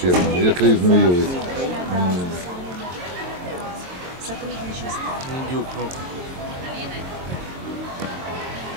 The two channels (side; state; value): left; late; 22 ms